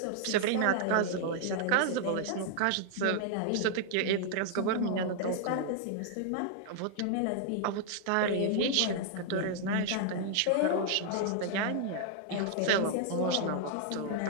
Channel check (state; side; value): different; both; correlation 0.00